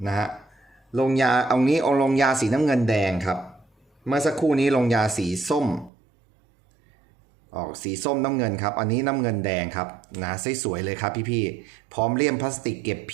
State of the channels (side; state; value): left; drops out; at 5.9 s